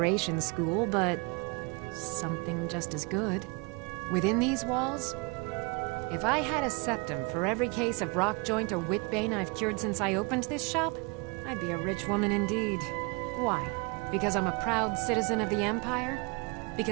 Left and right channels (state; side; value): quieter; left; 29.7 dB